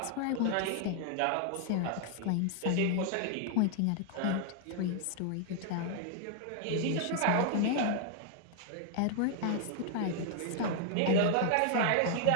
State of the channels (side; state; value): both; different; correlation 0.00